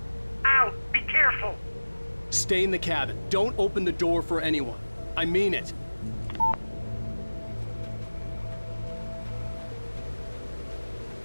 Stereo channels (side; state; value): both; inverted; correlation -1.00